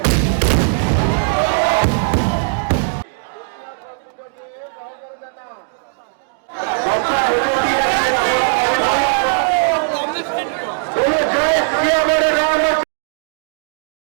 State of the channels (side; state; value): left; silent; digital silence